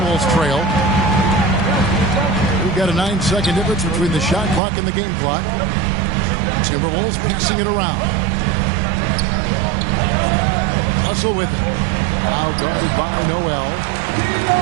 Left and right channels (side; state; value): left; drops out; at 4.6 s